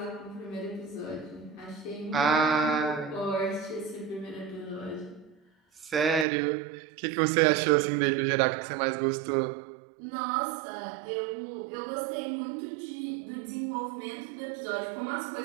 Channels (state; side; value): drops out; left; at 6.2 s